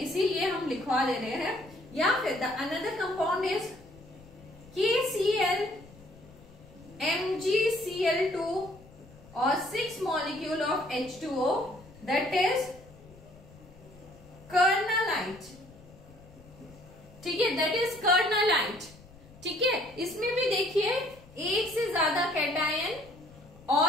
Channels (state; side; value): noise; left; rumble, 23 dB below the sound